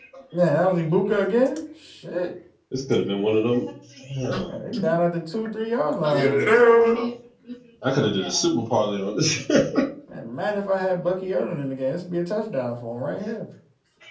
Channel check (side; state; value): both; identical; correlation 1.00